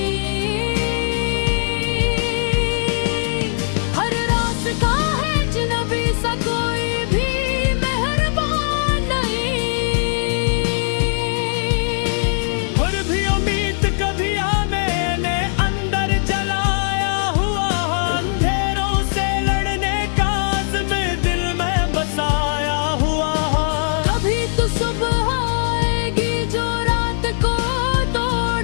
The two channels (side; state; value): right; silent; digital silence